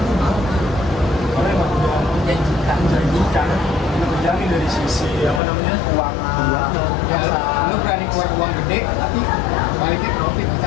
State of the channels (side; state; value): right; drops out; at 5.4 s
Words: mau. Karena emang udah Menjanjikan. menjanjikan, udah terjamin dari sisi apa namanya Keuangan. Ya, lu berani keluar uang gede, tapi baliknya profit